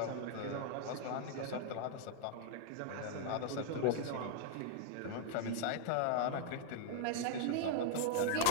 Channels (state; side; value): different; both; correlation -0.01